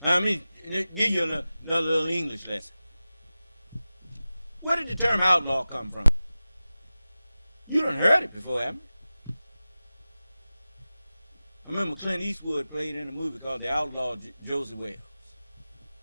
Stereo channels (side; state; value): both; inverted; correlation -0.95